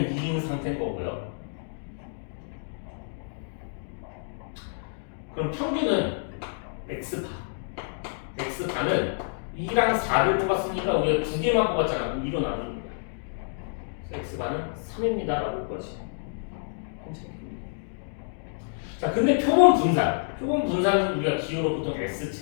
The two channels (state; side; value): silent; right; digital silence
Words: 2인 상태인 거고요. 그럼 평균은 x바. x바는 2랑 4를 뽑았으니까 우리가 2개만 뽑았잖아. 2로 나눕니다. x바는 3입니다. 라고 볼 거지. 자, 근데 표본 분산은 우리가 기호로 보통